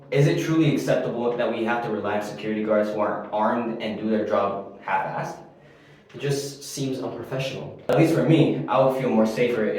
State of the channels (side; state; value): both; identical; correlation 1.00